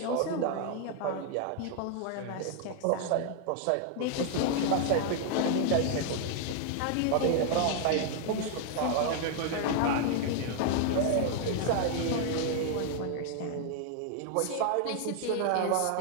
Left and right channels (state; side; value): different; both; correlation 0.00